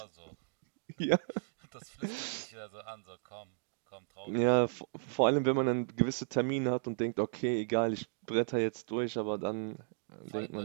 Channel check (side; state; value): left; silent; digital silence